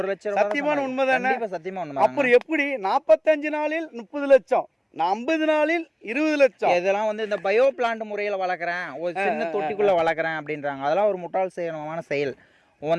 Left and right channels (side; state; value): both; identical; correlation 1.00